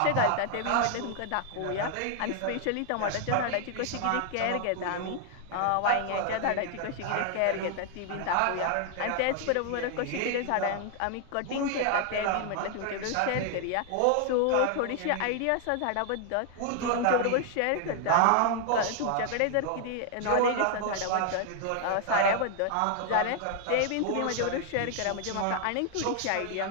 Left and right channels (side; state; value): both; different; correlation 0.00